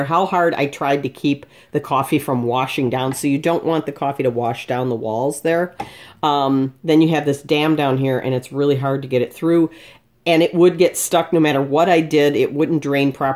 how hard I tried to keep the coffee from washing down. So you don't want the coffee to wash down the walls there. Then you have this dam down here, and it's really hard to get it through. And it would get stuck no matter what I did. It wouldn't drain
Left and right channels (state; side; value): identical; both; correlation 1.00